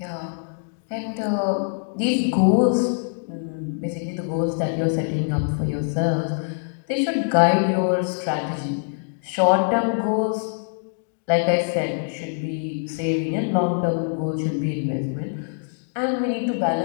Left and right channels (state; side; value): silent; right; digital silence